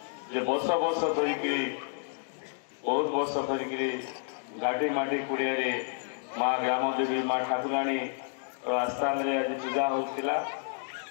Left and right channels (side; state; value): right; silent; 58 dB below the other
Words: ଯେ ବର୍ଷ ବର୍ଷ ଧରିକିରି ବହୁତ ବର୍ଷ ଧରିକିରି ଘାଟି ମାଟି କୁଡ଼ିଆରେ ମା ଗ୍ରାମ ଦେବୀ ମା ଠାକୁରାଣୀ ଆସ୍ଥାନରେ ଆଜି ପୂଜା ହେଉଥିଲା